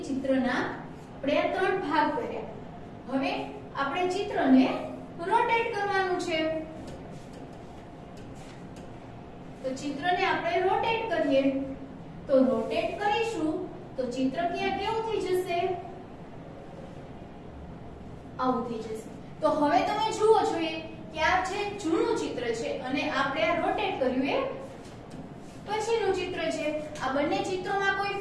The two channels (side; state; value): both; identical; correlation 1.00